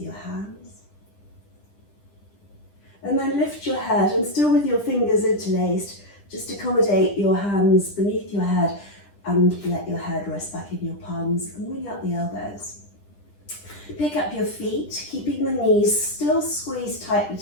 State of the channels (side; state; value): right; late; 10 ms